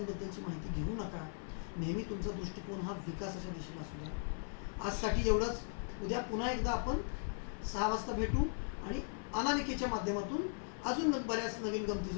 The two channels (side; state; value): right; silent; 52 dB below the other